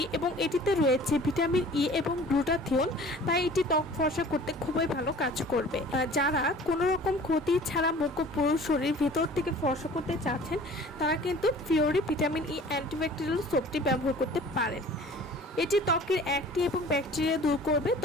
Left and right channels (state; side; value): normal; both; correlation 0.46